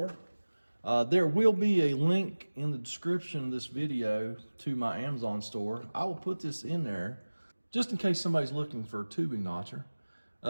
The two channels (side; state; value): both; inverted; correlation -1.00